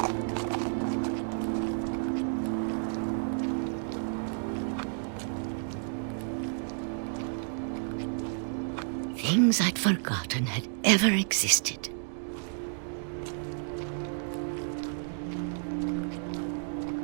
Things I'd forgotten had ever existed.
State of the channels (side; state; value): left; silent; digital silence